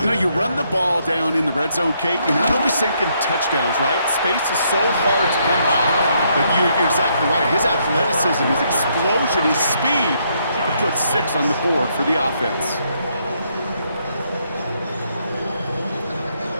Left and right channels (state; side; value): inverted; both; correlation -0.73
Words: know, you run the ball down in the red zone, Kate, you're not always thinking touchdowns, right? Space is so hard to come by. But you're exactly right. His athleticism, his explosion, his speed, to put 6 on the board for the offense.